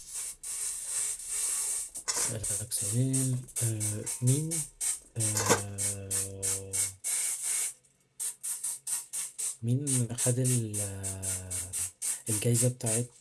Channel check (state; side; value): identical; both; correlation 1.00